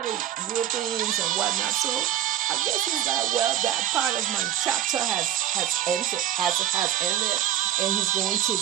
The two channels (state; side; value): quieter; left; 11.4 dB